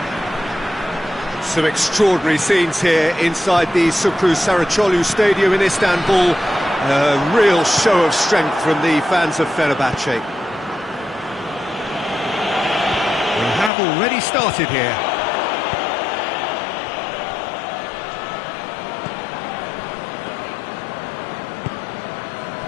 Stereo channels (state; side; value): drops out; right; at 13.7 s